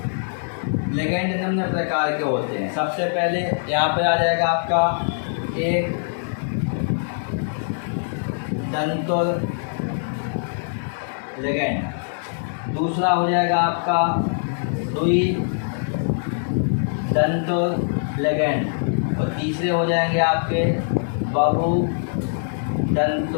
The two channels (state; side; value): silent; right; digital silence